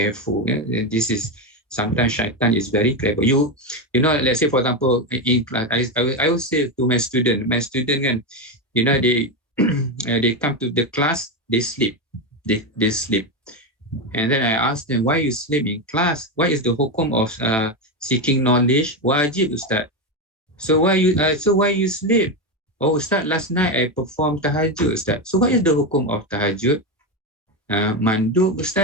This is, sometimes shaitan is very clever. You know, let's say, for example, in class, I will say to my student kan, they come to the class, they sleep. They sleep. And then I ask them, why you sleep in class? What is the hukum of seeking knowledge? Wajib, Ustaz. So why you sleep? Oh, Ustaz, last night I performed tahajud, Ustaz. So what is the hukum of tahajud? Mandub,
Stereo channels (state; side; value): normal; both; correlation 0.12